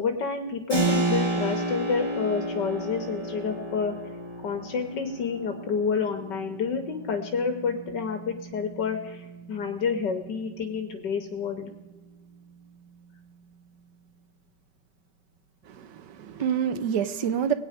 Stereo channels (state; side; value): late; right; 5.3 ms